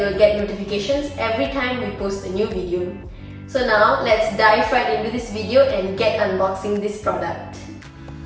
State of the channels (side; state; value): both; identical; correlation 1.00